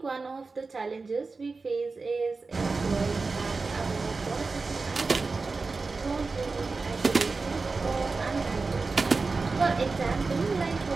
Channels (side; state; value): left; quieter; 4.0 dB